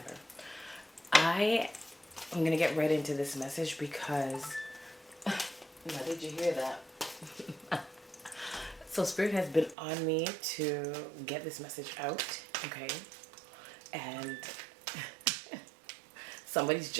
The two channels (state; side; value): drops out; left; at 9.8 s